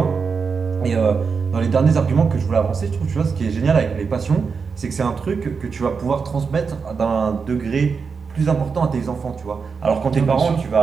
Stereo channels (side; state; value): left; quieter; 5.4 dB